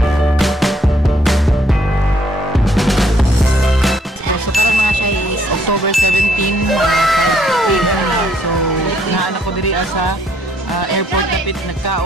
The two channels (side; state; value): both; normal; correlation 0.67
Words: October 17, so naanak ko diri sa airport napit